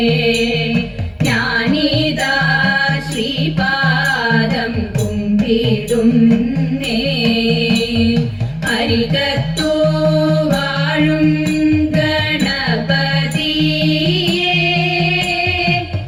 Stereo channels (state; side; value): identical; both; correlation 1.00